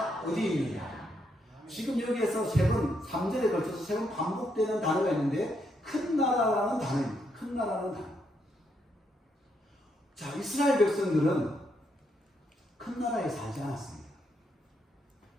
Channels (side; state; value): both; normal; correlation 0.77